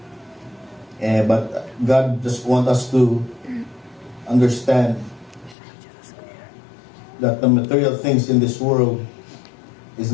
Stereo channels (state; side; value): drops out; right; at 5.6 s